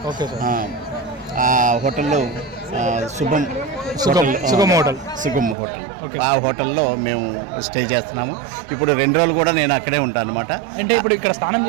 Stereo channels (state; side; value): drops out; left; at 5.6 s